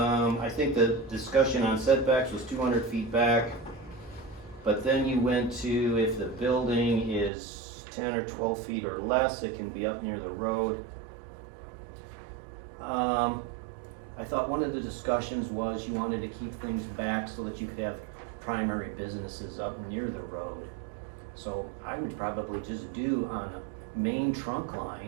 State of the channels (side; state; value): left; drops out; at 7.3 s